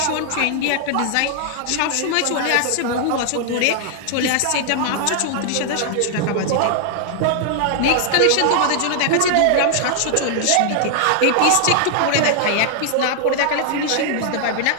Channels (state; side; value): different; both; correlation 0.00